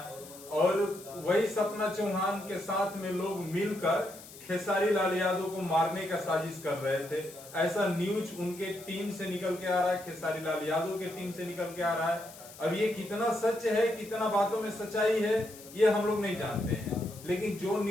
और वही सपना चौहान के साथ में लोग मिलकर खेसारी लाल यादव को मारने का साजिश कर रहे थे। ऐसा न्यूज उनके टीम से निकल के आ रहा है, खेसारी लाल यादव के टीम से निकल के आ रहा है। अब ये कितना सच है, कितना बातों में सच्चाई है, ये हम लोग नहीं जानते हैं, लेकिन जो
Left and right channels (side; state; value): left; noise; hiss, 18 dB below the sound